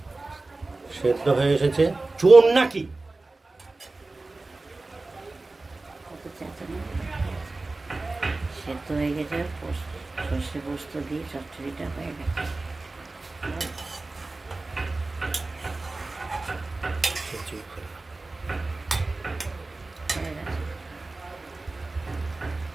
সেদ্ধ হয়ে এসেছে। চোর নাকি? সেদ্ধ হয়ে গেছে, সর্ষে পোস্ত দিয়ে চচ্চড়িটা হয়ে গেছে।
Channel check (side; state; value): left; quieter; 3.3 dB